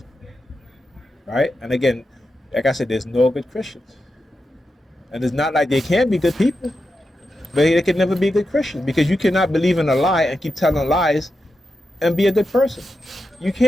Right? And again, like I said, there's no good Christians. And it's not like they can be good people, but they can never be good Christians, because you cannot believe in a lie and keep telling lies and be a good person. You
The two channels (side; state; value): both; normal; correlation 0.88